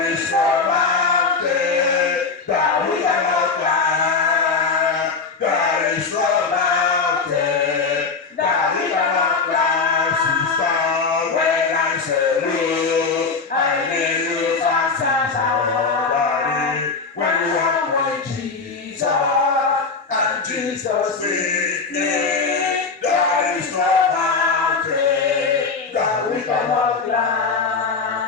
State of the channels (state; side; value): quieter; right; 4.7 dB